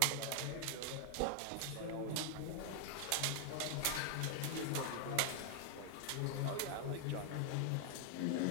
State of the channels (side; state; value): both; different; correlation 0.00